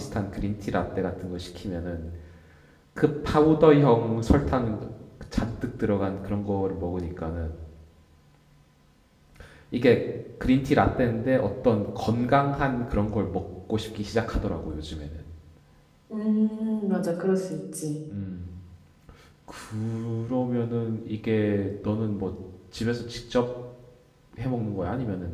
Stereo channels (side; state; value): both; identical; correlation 1.00